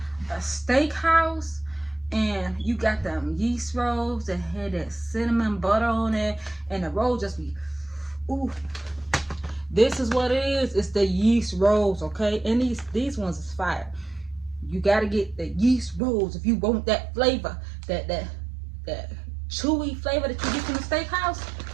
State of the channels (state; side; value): drops out; left; at 16.0 s